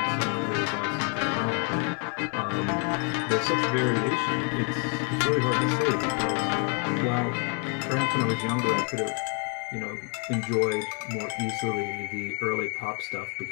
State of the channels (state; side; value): quieter; right; 34.0 dB